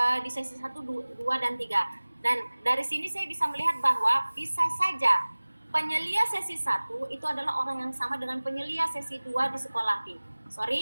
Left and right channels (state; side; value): inverted; both; correlation -1.00